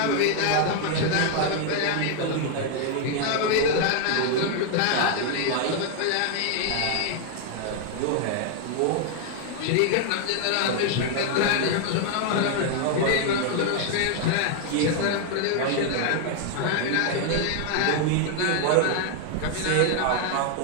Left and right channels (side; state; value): both; different; correlation 0.00